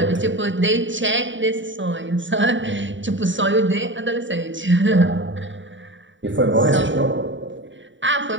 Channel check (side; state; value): left; late; 0.55 ms